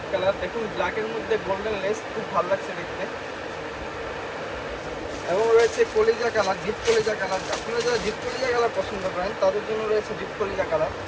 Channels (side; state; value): both; identical; correlation 1.00